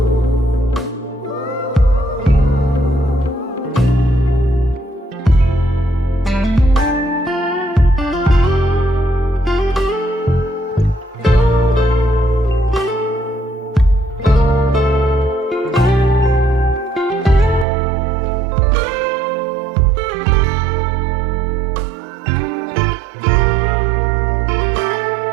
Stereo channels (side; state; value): left; drops out; at 17.7 s